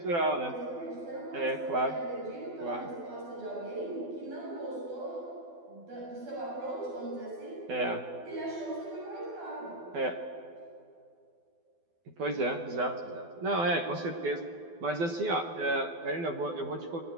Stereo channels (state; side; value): late; left; 12 ms